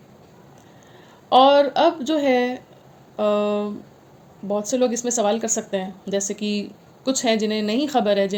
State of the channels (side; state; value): both; identical; correlation 1.00